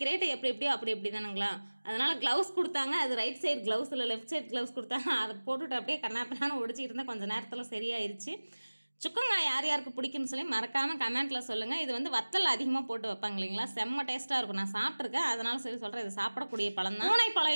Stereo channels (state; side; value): inverted; both; correlation -1.00